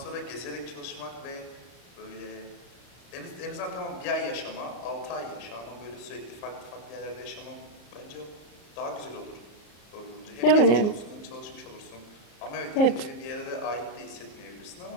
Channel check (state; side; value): late; right; 34 ms